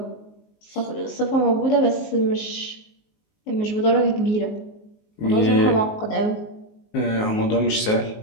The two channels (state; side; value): late; right; 19 ms